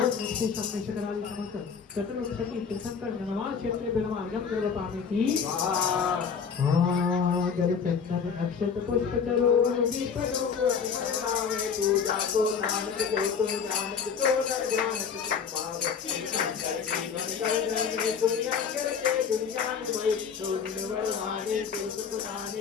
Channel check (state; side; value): quieter; right; 6.4 dB